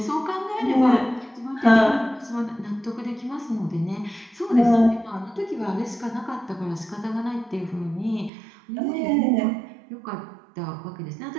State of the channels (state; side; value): drops out; left; at 8.3 s